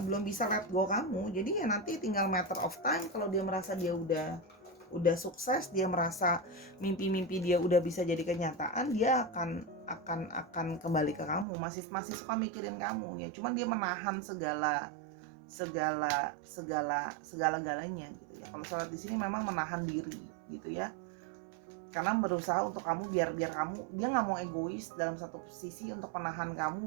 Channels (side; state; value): left; drops out; at 11.5 s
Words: bisa let go kamu. Jadi ya nanti tinggal matter of time, kalau dia merasa dia udah sukses, dia merasa mimpi-mimpi dia udah bisa jadi kenyataan, dia akan kembali ke kamu. Masih suka mikirin kamu ya, cuman dia menahan segala-galanya gitu ya. Kalau Sora di sini memang menahan diri gitu ya, karena berusaha untuk kamu, biar kamu, dia nggak mau egois dalam satu sisi untuk menahan